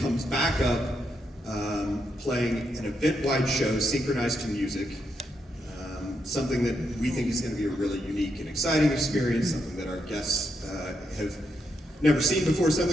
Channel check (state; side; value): normal; both; correlation 0.81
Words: comes back up, playing an event-wide show synchronized to music. Something that we think is going to be a really unique and exciting experience, something that our guests have never seen before,